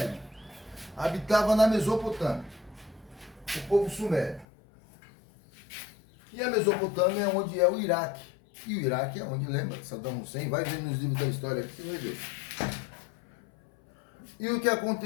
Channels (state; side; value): drops out; right; at 4.5 s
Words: habitava na Mesopotâmia. O povo sumério. E a Mesopotâmia é onde é o Iraque. E o Iraque é onde, lembra, Saddam Hussein, vai ver nos livros da história aqui, você vai ver. E o que